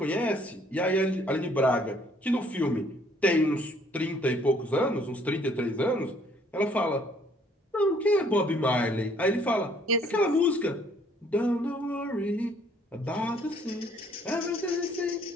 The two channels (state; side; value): normal; both; correlation 0.62